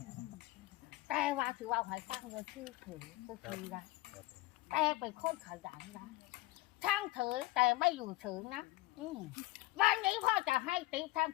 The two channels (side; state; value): right; quieter; 19.2 dB